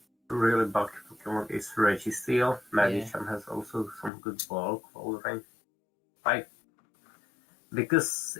really bulky Pokemon is Registeel. Medicham has also some good bulk Walrein. Like, because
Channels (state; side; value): drops out; right; at 4.1 s